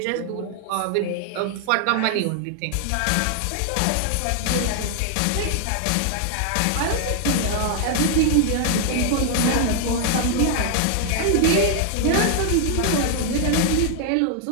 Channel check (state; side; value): different; both; correlation 0.00